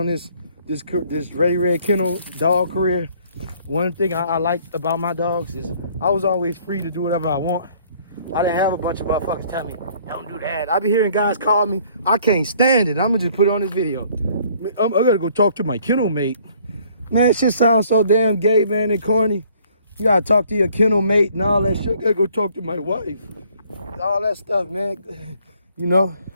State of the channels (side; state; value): both; inverted; correlation -0.60